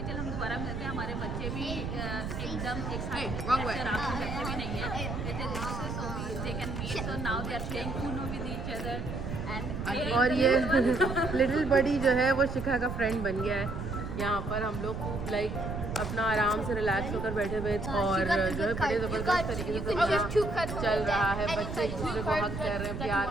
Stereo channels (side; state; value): right; noise; rumble, 5 dB below the sound